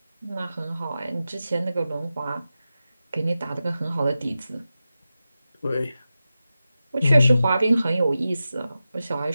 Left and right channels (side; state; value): both; inverted; correlation -0.92